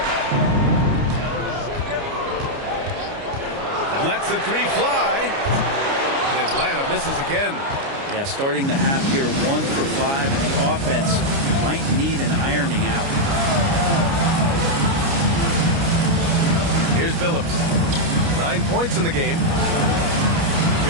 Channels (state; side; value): late; left; 29 ms